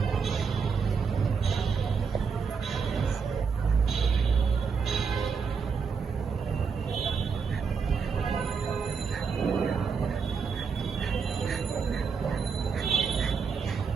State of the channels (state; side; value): quieter; left; 5.7 dB